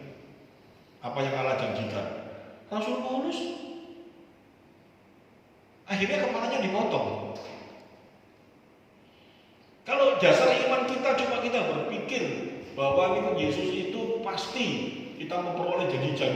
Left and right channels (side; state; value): both; identical; correlation 1.00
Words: Apa yang Allah janjikan? Rasul Paulus akhirnya kepalanya dipotong. Kalau dasar iman kita cuma kita berpikir bahwa Yesus itu pasti kita memperoleh